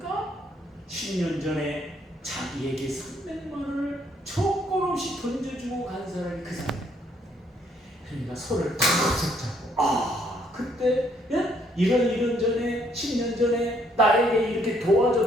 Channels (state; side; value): normal; both; correlation 0.68